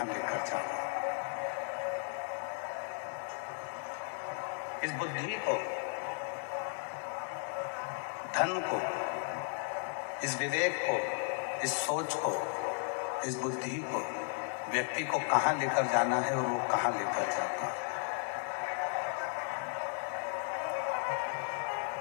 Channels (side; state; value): right; silent; 54 dB below the other